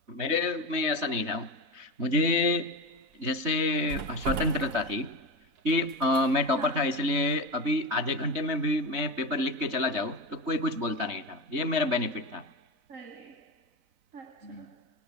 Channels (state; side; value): late; left; 4.0 ms